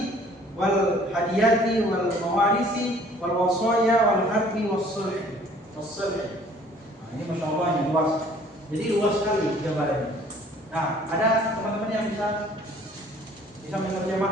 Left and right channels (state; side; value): normal; both; correlation 0.55